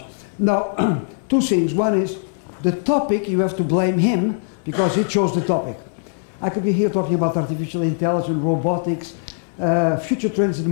Now, two things. One is the topic, you have to blame him because he chose the topic. I could be here talking about artificial intelligence, robotics, future trends in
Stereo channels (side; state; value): right; silent; 61 dB below the other